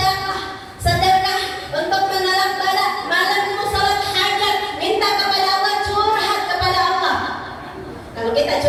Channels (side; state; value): both; identical; correlation 1.00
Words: sedekah untuk menolak bala. Malam itu salat hajat, minta kepada Allah, curhat kepada Allah. Kalau kita